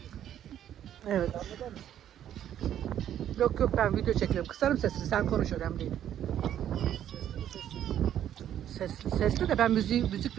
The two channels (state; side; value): quieter; left; 10.7 dB